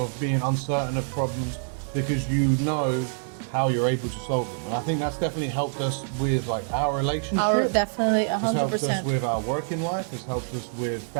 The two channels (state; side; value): silent; left; digital silence